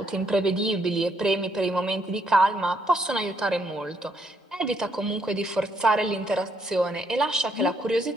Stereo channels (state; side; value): normal; both; correlation 0.73